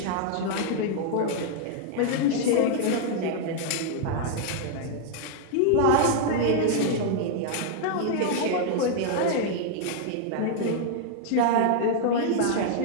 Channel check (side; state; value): both; different; correlation 0.00